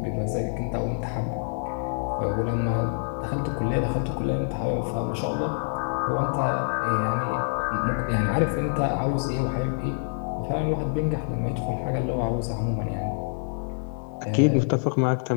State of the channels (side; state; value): right; silent; 57 dB below the other